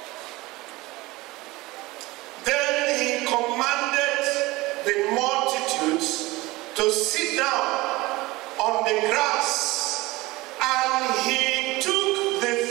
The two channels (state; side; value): quieter; left; 20.6 dB